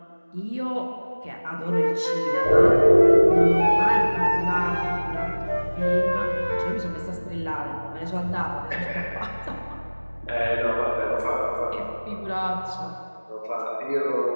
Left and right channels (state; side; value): inverted; both; correlation -1.00